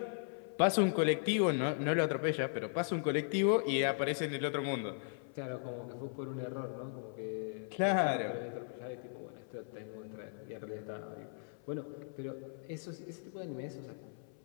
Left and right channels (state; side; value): silent; right; 53 dB below the other